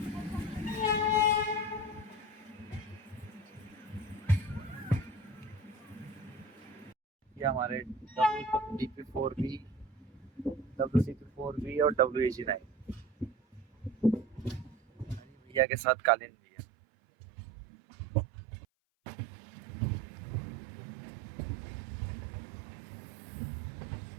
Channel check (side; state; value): left; drops out; at 15.7 s